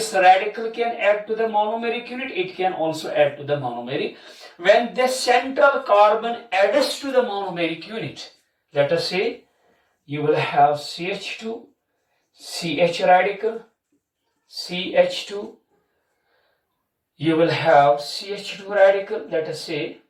radical can add to the monomeric unit. It can also add to the monomeric. When the central carbon adds to the monomeric unit, let us say you will have CH2, CH radical, CH2. You will have CH2 radical. Let us say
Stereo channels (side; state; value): both; identical; correlation 1.00